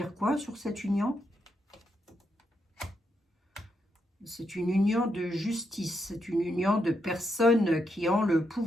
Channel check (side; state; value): both; normal; correlation 0.81